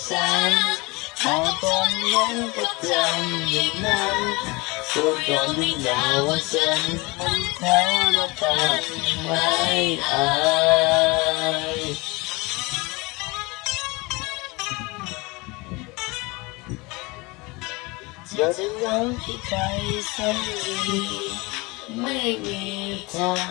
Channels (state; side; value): quieter; right; 25.0 dB